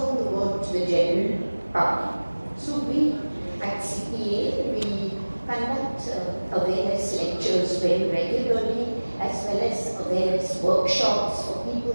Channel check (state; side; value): inverted; both; correlation -1.00